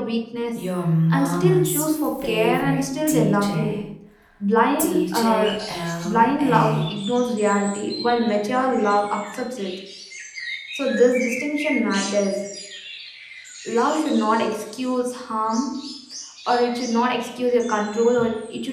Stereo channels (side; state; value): both; identical; correlation 1.00